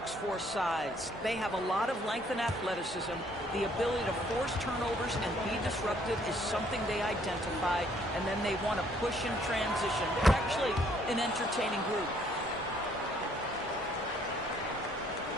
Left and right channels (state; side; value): normal; both; correlation 0.64